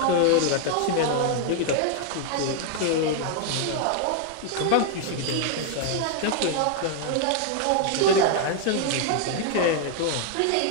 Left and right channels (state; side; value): different; both; correlation 0.00